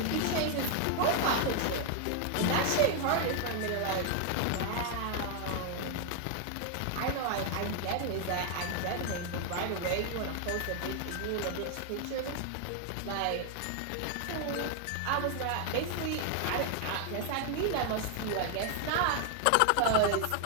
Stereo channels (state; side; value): different; both; correlation 0.00